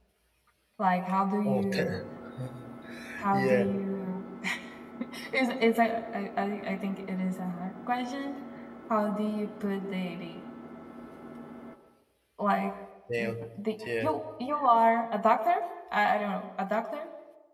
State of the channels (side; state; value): both; identical; correlation 1.00